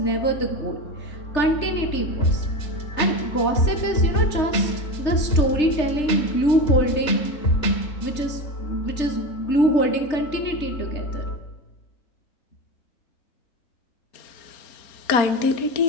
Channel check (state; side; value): late; right; 3.3 ms